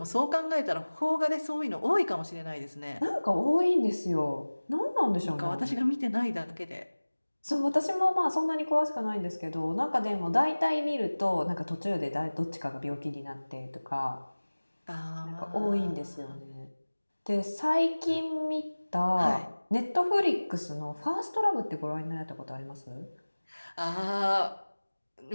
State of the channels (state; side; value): inverted; both; correlation -1.00